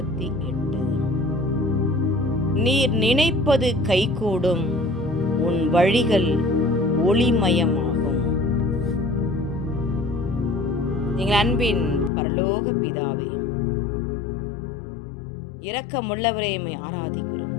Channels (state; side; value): drops out; right; at 12.1 s